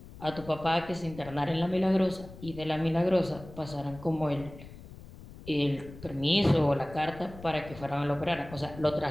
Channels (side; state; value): left; noise; rumble, 16 dB below the sound